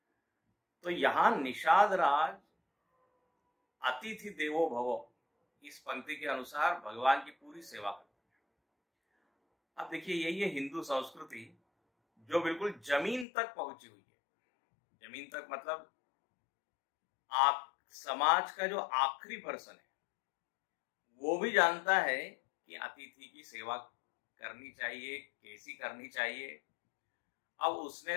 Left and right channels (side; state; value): right; drops out; at 13.2 s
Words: तो यहां निषाद राज अतिथि देवो भव इस पंक्ति के अनुसार भगवान की पूरी सेवा करते हैं। अब देखिए यही है हिंदू संस्कृति जो बिल्कुल जमीन तक पहुंची हुई है। जमीन तक मतलब आप समाज का जो आखिरी पर्सन है वो भी जानता है कि अतिथि की सेवा करनी चाहिए, कैसी करनी चाहिए। अब उसने